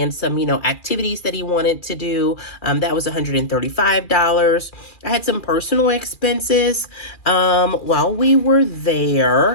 some, activities that he wanted to do. That was $135. I had some personal expenses while we were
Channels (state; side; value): late; right; 2.4 ms